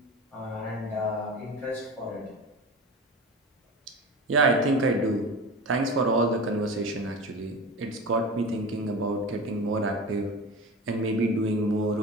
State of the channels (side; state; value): both; normal; correlation 0.30